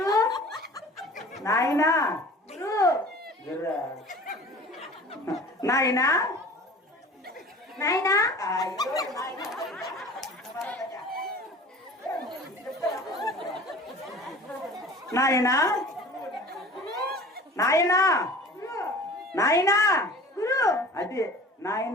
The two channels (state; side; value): normal; both; correlation 0.42